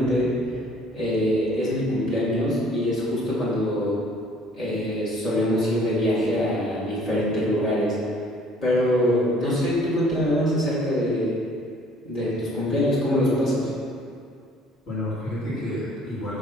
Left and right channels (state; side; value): normal; both; correlation 0.57